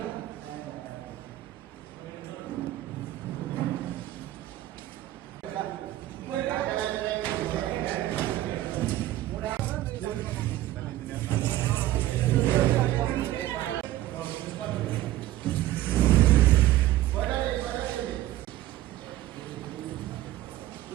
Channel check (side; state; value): left; quieter; 14.9 dB